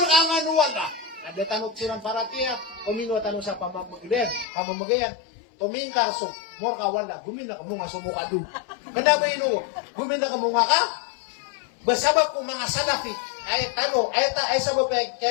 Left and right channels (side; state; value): right; drops out; at 4.5 s